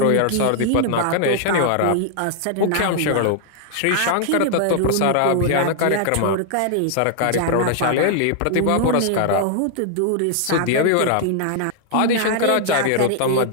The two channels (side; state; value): both; different; correlation 0.00